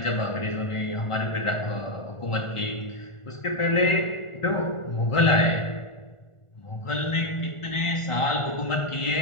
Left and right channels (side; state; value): right; late; 1.4 ms